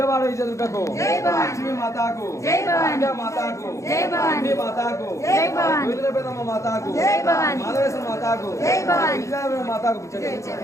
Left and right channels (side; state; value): right; late; 0.15 ms